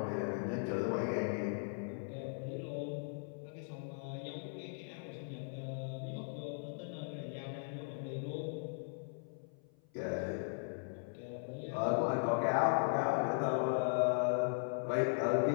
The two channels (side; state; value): right; silent; 52 dB below the other